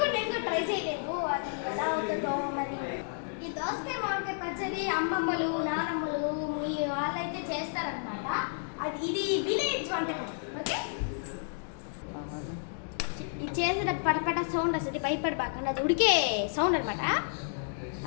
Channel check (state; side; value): silent; right; digital silence